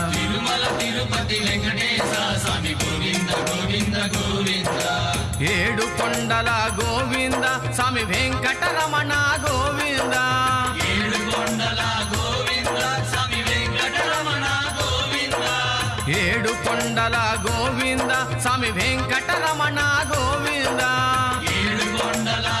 తిరుమల తిరుపతి వెంకటేశ స్వామి గోవింద గోవింద గోవింద. ఏడు కొండల గోవింద స్వామి వెంకటరమణ గోవింద. ఏడు కొండల గోవింద స్వామి వెంకటరమణ గోవింద. ఏడు కొండల గోవింద స్వామి వెంకటరమణ గోవింద. ఏడు కొండల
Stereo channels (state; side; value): identical; both; correlation 1.00